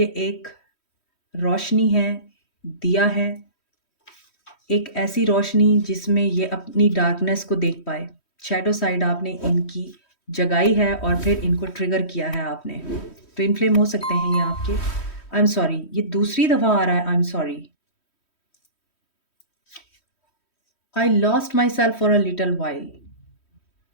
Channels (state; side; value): late; right; 3.1 ms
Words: एक रोशनी है, दिया है, एक ऐसी रोशनी जिसमें ये अपनी डार्कनेस को देख पाए। शैडो साइड आपने इनकी जगाई है और फिर इनको ट्रिगर किया है आपने। ट्विन फ्लेम हो सकते हैं ये आपके। आई एम सॉरी, ये दूसरी दफ़ा आ रहा है I am sorry. I lost myself for a little while.